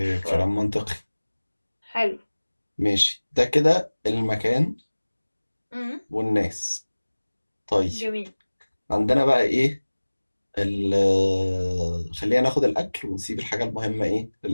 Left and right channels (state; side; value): inverted; both; correlation -1.00